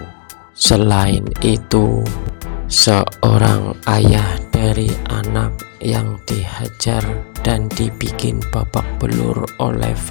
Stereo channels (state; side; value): silent; right; digital silence